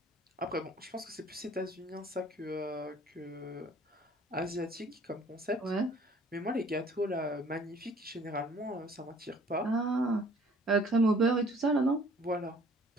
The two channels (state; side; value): normal; both; correlation 0.55